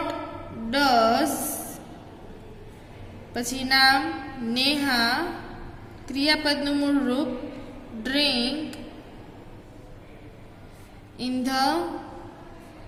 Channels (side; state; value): both; identical; correlation 1.00